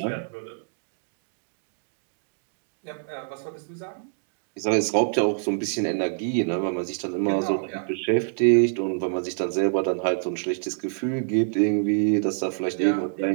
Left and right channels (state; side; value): silent; left; digital silence